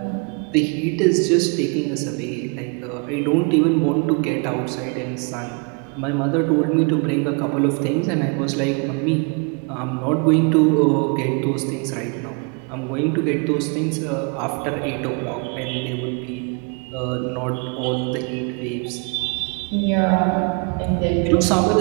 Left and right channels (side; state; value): left; quieter; 34.8 dB